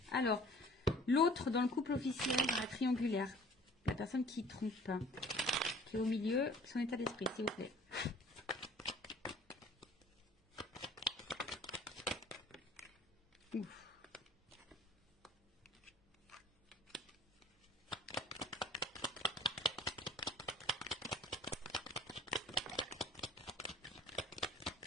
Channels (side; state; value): both; normal; correlation 0.51